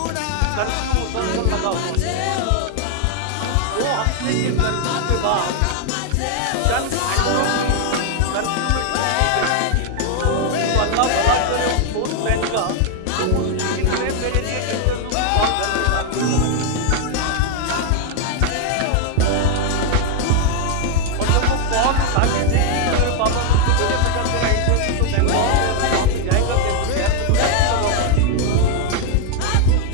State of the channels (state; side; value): different; both; correlation 0.00